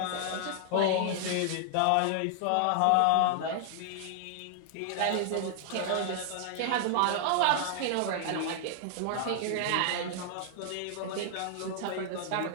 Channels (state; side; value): different; both; correlation 0.00